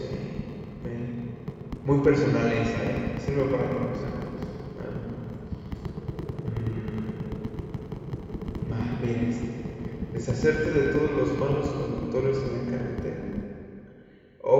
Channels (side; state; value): both; identical; correlation 1.00